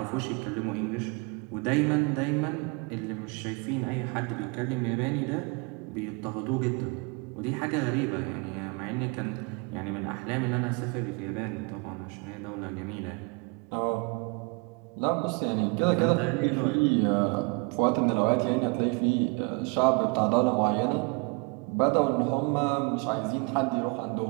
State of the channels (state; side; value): quieter; left; 30.9 dB